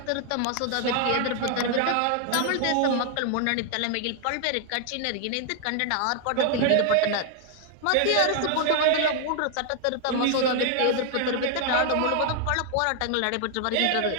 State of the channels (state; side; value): different; both; correlation 0.00